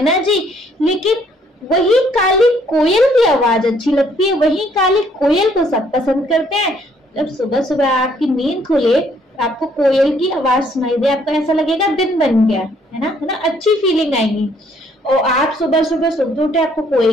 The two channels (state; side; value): normal; both; correlation 0.65